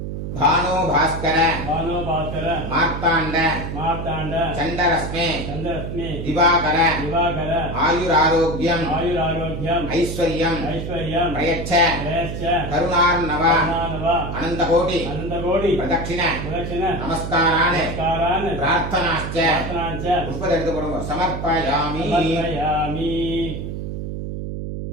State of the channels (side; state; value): right; noise; hum, 6 dB below the sound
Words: भानो भास्कर भानो भास्कर मार्ताण्ड मार्ताण्ड चण्डरश्मे चन्द्ररश्मि दिवाकर दिवाकर आयुरारोग्यम् आयुरारोग्यम् ऐश्वर्यम् ऐश्वर्यम् प्रयच्छ प्रयश्च करुणार्णव करुणानव अनन्तकोटि अनन्तकोटि प्रदक्षिण प्रदक्षिण नमस्कारान् नमस्कारान् प्रार्थनाश्च प्रार्थनाञ्च पुष्पத்தை எடுத்து போடுங்க समर्पयामि समर्पयामि